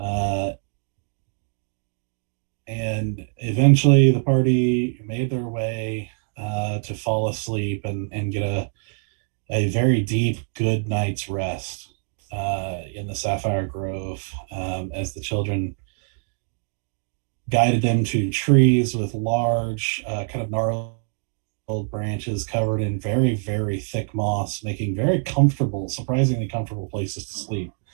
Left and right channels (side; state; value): left; silent; 60 dB below the other